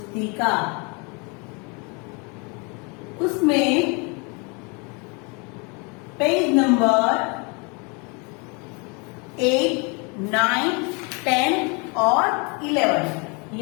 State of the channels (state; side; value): quieter; right; 31.8 dB